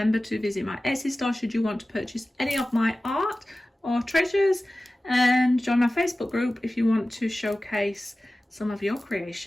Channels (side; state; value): both; normal; correlation 0.96